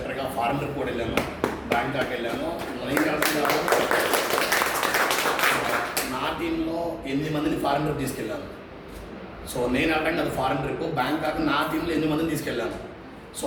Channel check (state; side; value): identical; both; correlation 1.00